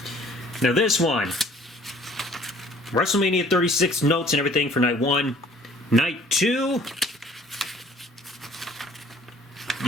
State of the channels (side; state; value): both; normal; correlation 0.55